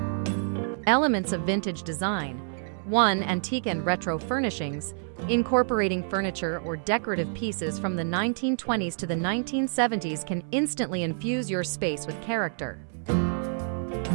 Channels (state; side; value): silent; left; 60 dB below the other